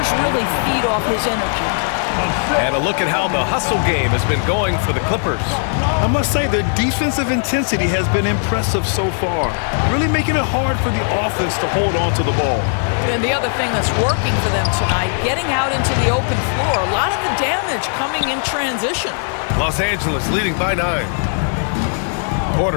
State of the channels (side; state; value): right; silent; 62 dB below the other